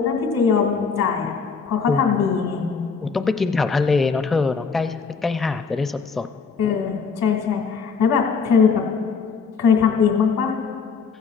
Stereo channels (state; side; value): quieter; right; 5.5 dB